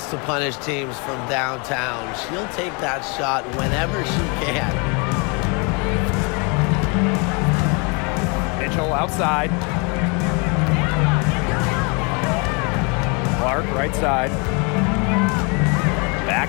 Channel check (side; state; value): right; quieter; 32.3 dB